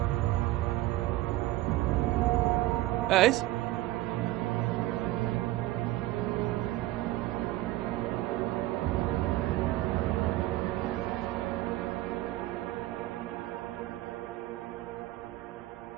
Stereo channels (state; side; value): quieter; left; 16.8 dB